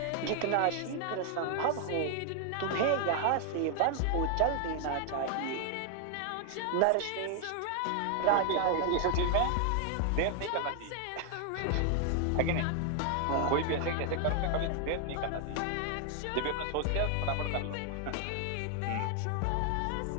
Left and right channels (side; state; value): both; different; correlation 0.00